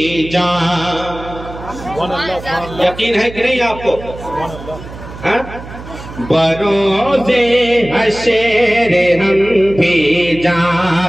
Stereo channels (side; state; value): right; noise; hum, 14 dB below the sound